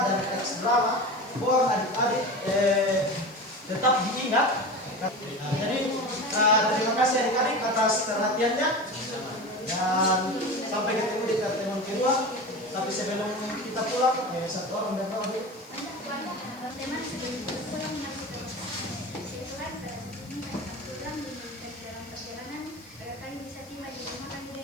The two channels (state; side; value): noise; left; hiss, 26 dB below the sound